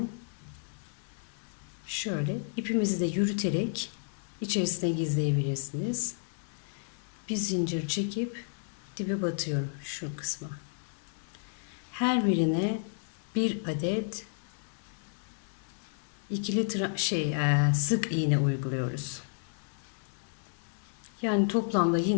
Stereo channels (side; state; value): right; silent; digital silence